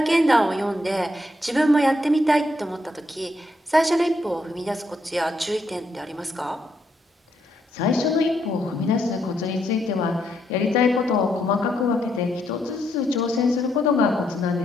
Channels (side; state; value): both; normal; correlation 0.77